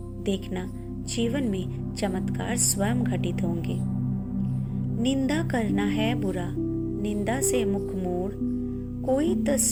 देखना, जीवन में चमत्कार स्वयं घटित होंगे। निंदा करना है बुरा, निंदा से मुख मोड़, कोई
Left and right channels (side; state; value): both; identical; correlation 1.00